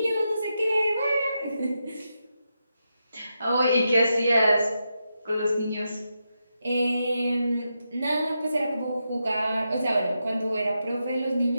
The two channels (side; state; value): both; inverted; correlation -0.86